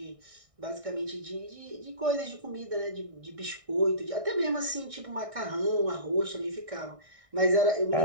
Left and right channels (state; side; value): late; left; 1.6 ms